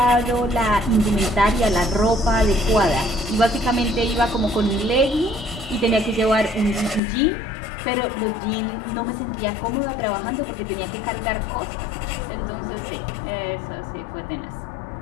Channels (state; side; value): drops out; right; at 7.0 s